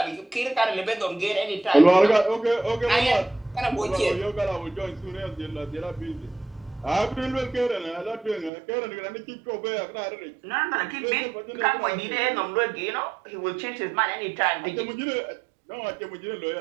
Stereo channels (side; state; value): left; drops out; at 8.5 s